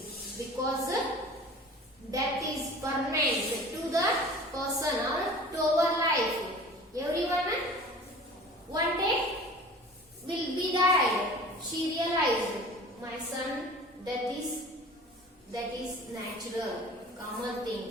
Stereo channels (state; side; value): normal; both; correlation 0.42